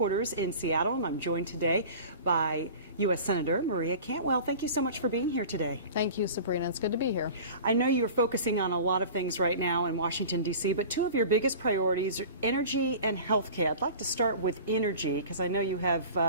in Seattle, and I'm joined today by U.S. Senator Maria Cantwell. Thank you so much for being here today. Thank you, Sabrina. It's good to be here. I know you're focusing on a lot of things right now in Washington, D.C., but two of your biggest priorities are energy and health care. I'd like to start with energy because I know you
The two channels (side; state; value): both; inverted; correlation -0.39